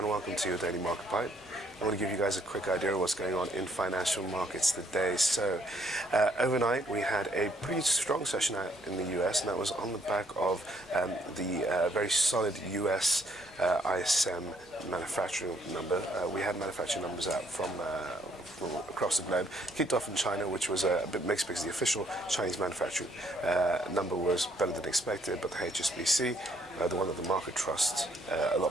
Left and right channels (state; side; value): normal; both; correlation 0.68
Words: welcome to your Daily Market Bite. I want to give you guys a quick idea of what's going on in financial markets today. So, overnight we had a pretty strong session out in the US, and that was on the back of the very solid US ISM manufacturing number. We had manufacturing numbers out from across the globe. Kicked off in China, which was a bit mixed because the official Chinese manufacturing number was better than expected, but the HSBC, the one that the market trusts a